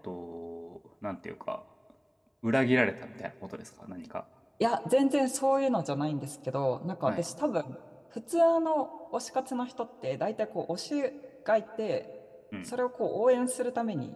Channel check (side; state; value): both; identical; correlation 1.00